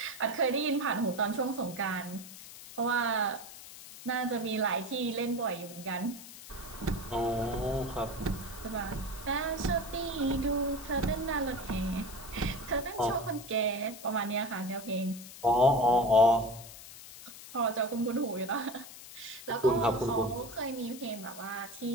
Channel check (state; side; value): noise; left; hiss, 15 dB below the sound